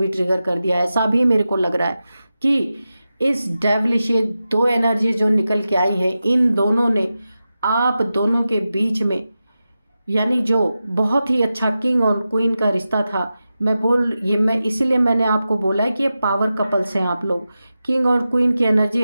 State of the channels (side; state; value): both; inverted; correlation -0.92